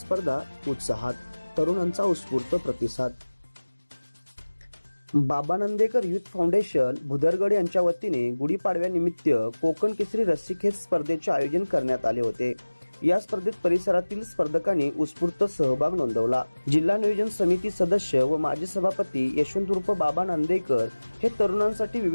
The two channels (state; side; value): inverted; both; correlation -1.00